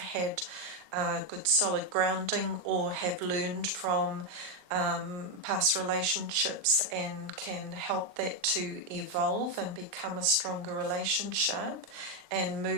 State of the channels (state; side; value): late; left; 39 ms